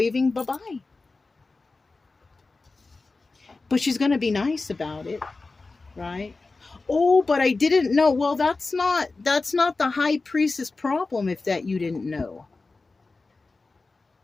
bye-bye. But she's going to be nice about it, right? Oh, but I didn't know. Well, that's not the High Priestess problem if that you didn't know.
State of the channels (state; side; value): quieter; right; 3.7 dB